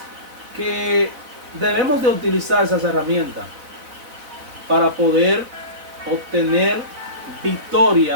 que debemos de utilizar esas herramientas para poder obtener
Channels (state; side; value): late; left; 4.0 ms